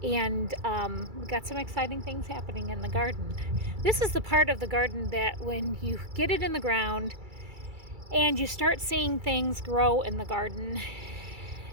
and we got some exciting things happening in the garden. This is the part of the garden that when you get it in the ground and you start seeing things grow in the garden,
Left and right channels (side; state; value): left; late; 2.3 ms